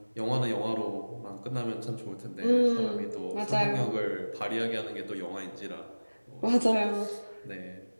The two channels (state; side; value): inverted; both; correlation -1.00